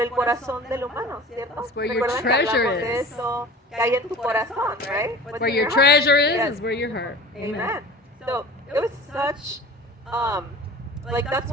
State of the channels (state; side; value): normal; both; correlation 0.40